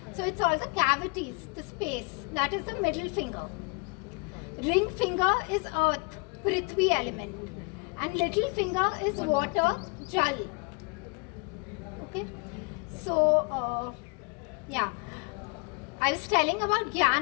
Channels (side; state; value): right; quieter; 33.6 dB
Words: So it's all the cavities, the space. That is the middle finger. Ring finger is earth, Prithvi element. And little finger is water, Jal. Okay? So, yeah. I was telling about